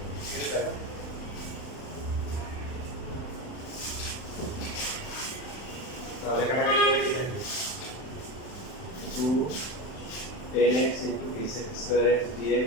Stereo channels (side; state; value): right; late; 39 ms